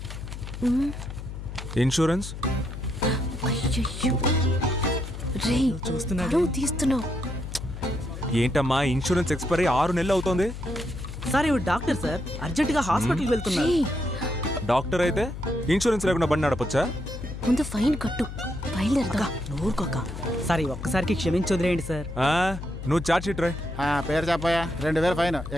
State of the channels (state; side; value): noise; left; hum, 9 dB below the sound